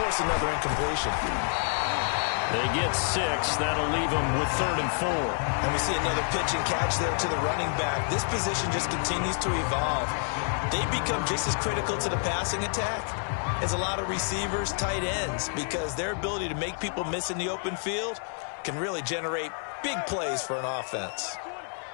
another incompletion. They get 6. That'll leave them with 3rd and 4. And we see another pitch and catch there to the running back. This position just continues to evolve. They become just as critical to the passing attack as a lot of receivers, tight ends, because their ability to make people miss in the open field can really generate big plays for an offense.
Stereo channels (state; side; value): silent; right; 59 dB below the other